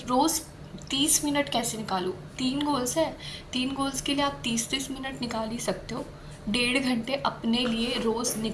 30 मिनट कैसे निकालूँ। 3 गोल्स है, 3 गोल्स के लिए आप 30-30 मिनट निकाल ही सकते हो। 1.5 घंटे अपने लिए रोज़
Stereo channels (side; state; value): both; identical; correlation 1.00